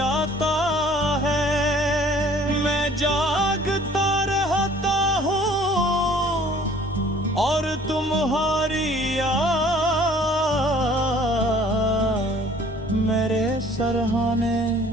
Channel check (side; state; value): both; normal; correlation 0.53